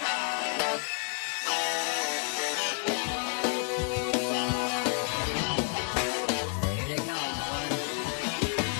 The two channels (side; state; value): right; quieter; 37.7 dB